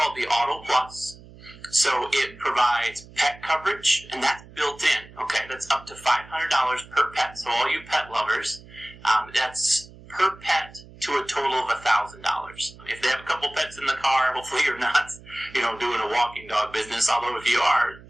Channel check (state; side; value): noise; right; hum, 20 dB below the sound